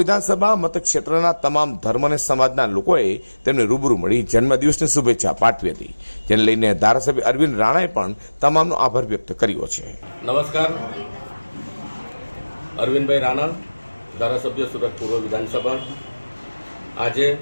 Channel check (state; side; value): inverted; both; correlation -1.00